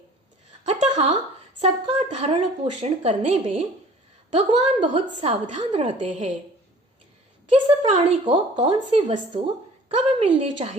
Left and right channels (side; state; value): both; normal; correlation 0.49